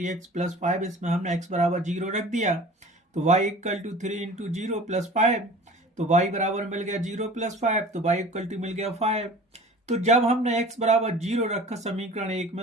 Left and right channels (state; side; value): normal; both; correlation 0.42